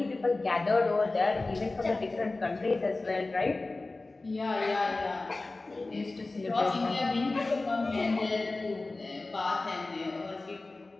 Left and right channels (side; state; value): right; quieter; 3.3 dB